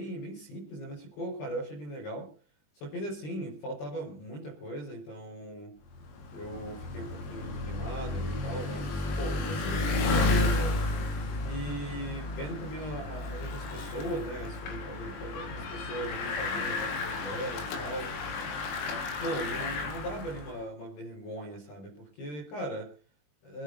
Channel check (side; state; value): right; late; 20 ms